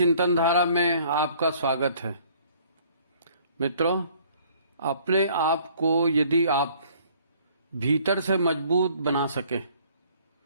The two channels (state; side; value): inverted; both; correlation -0.57